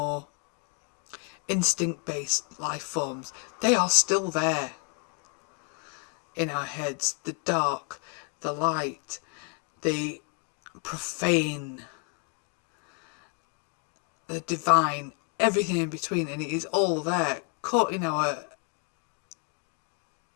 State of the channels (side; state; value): right; quieter; 39.9 dB